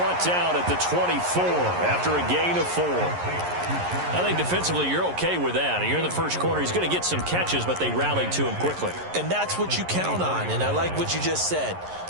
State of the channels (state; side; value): late; left; 11 ms